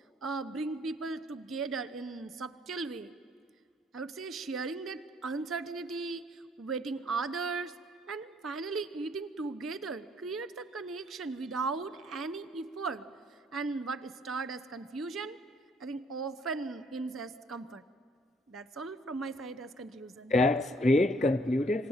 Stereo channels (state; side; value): normal; both; correlation 0.64